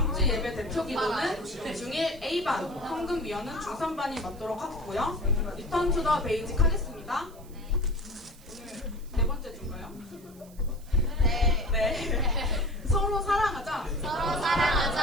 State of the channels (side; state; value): right; noise; hiss, 24 dB below the sound